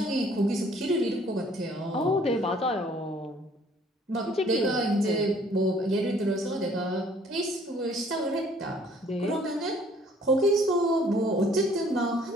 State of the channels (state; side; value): normal; both; correlation 0.59